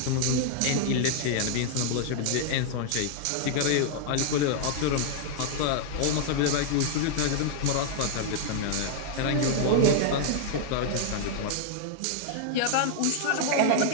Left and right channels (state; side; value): different; both; correlation -0.01